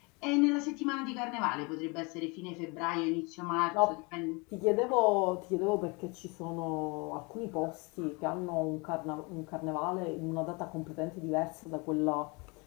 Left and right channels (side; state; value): right; quieter; 28.9 dB